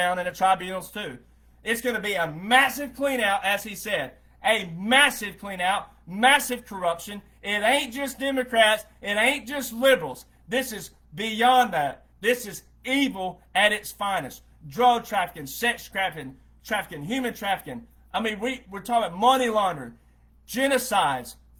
in the tribunals too. It's going to be a massive clean out, as he said. A massive clean out, massive corruption. It ain't just Democrats. It ain't just liberals. This is beyond that. This is evil at its finest. Drug trafficking, sex trafficking, human trafficking. I mean, we're talking about money laundering, genocides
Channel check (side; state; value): both; identical; correlation 1.00